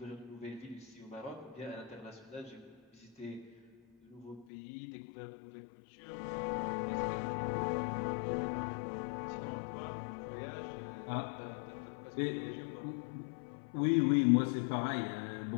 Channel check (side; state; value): right; drops out; at 4.5 s